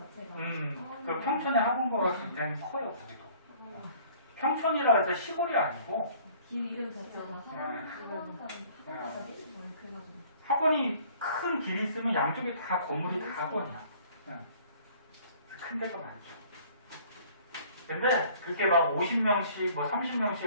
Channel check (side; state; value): both; inverted; correlation -0.53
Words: 그 평촌의 학원가가 굉장히 커요, 거기도. 평촌이라 해서 시골이 아니고. 길 이름 자체가 학원 가자니? 그래가지고. 학원이 큰 길이 있으면 양쪽에 다 건물이 다 학원이야. 큰 데가 많죠. 근데 그렇게 막 50명씩, 뭐